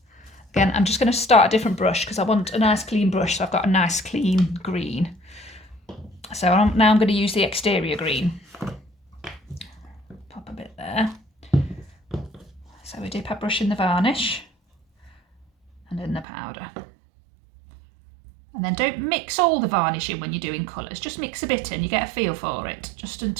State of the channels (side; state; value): left; drops out; at 16.2 s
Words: Again, I'm just going to start a different brush because I want a nice clean brush, so I've got a nice clean green. So now I'm going to use the exterior green. Pop a bit there. So we dip our brush in the varnish and in the powder. And then don't mix all the varnish in when you're doing colours, just mix a bit in, you get a feel for it, just